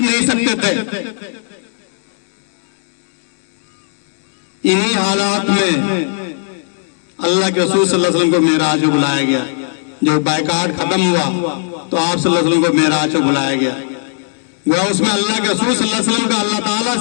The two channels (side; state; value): right; silent; digital silence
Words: نہیں سکتے تھے. انہی حالات میں اللہ کے رسول صلی اللہ علیہ وسلم کو معراج کو بلایا گیا. جب بائیکاٹ ختم ہوا تو آپ صلی اللہ علیہ وسلم کو معراج کو بلایا گیا. وہ اس میں اللہ کے رسول صلی اللہ علیہ وسلم کا اللہ تعالیٰ